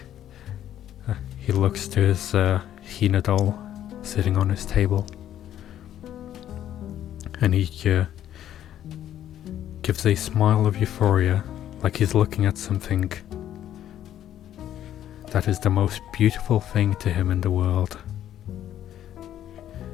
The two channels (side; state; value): right; quieter; 11.3 dB